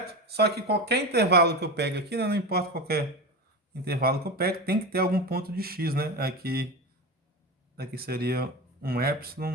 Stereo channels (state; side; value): normal; both; correlation 0.23